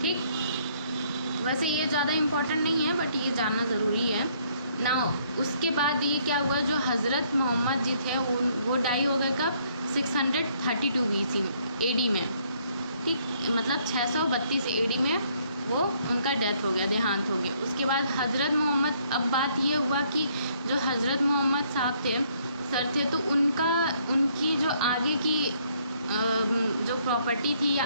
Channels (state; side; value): inverted; both; correlation -0.66